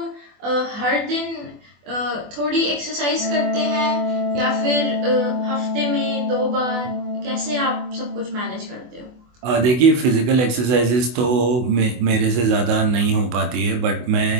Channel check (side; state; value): left; late; 24 ms